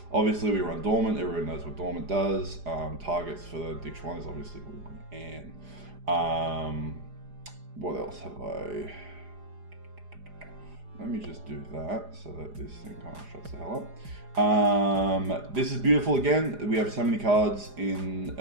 Obviously, we run Dormant. Everyone knows what Dormant does. Targets for the Ditch 1 is obviously Anne. What else have I? Let me just do that so that this thing kind of shuts the hell up. This is beautiful again. We have so many cards in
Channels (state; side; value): late; left; 4.9 ms